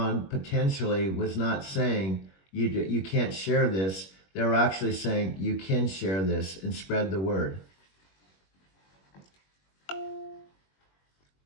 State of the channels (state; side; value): late; right; 21 ms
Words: potentially was not saying, you can't share this. They were actually saying you can share this and spread the word.